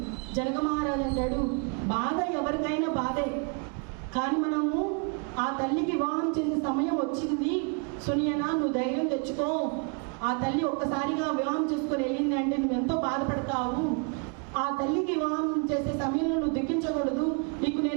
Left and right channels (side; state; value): left; quieter; 37.2 dB